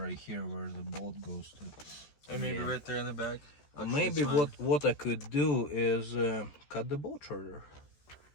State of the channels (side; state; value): right; late; 13 ms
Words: here where the bolt goes to. And maybe Yeah. right there in the back. Actually, Maybe it's fine. what I could do is cut the bolt shorter